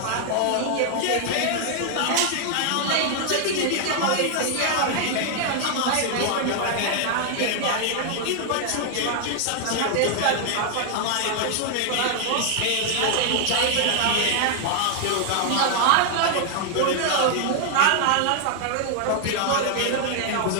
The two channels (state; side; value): different; both; correlation 0.00